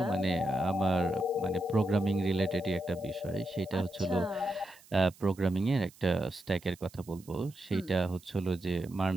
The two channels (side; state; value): right; noise; hiss, 25 dB below the sound